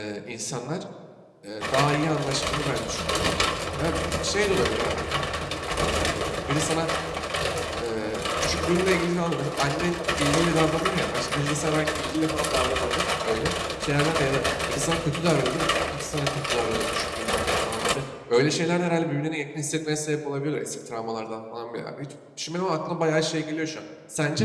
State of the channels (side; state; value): both; identical; correlation 1.00